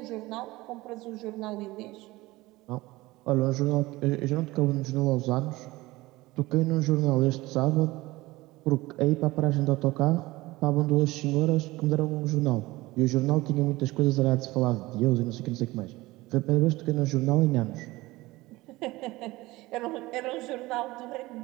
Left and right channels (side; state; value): left; quieter; 19.7 dB